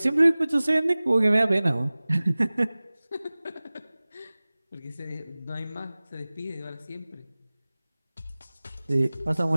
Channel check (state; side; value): inverted; both; correlation -0.99